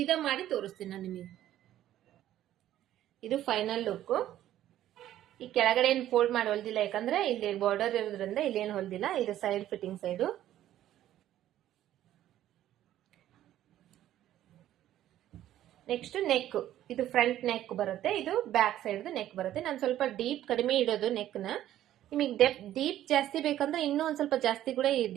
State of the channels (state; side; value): quieter; left; 12.6 dB